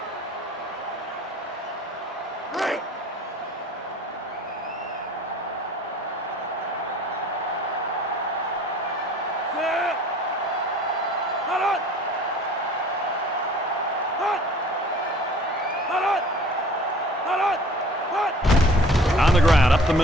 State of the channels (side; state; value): both; normal; correlation 0.49